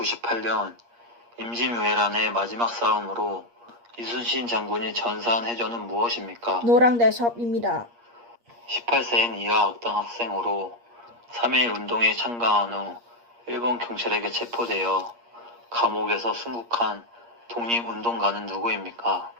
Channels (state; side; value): late; left; 8.5 ms